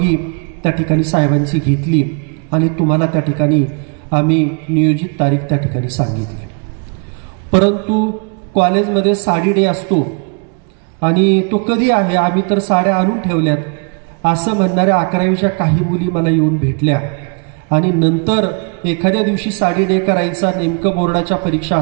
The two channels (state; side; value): quieter; left; 37.7 dB